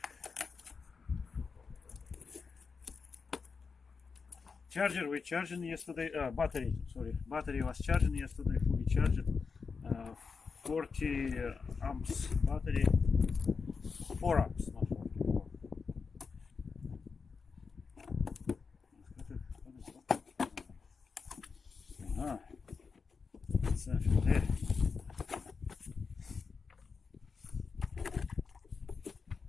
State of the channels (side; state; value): right; quieter; 5.1 dB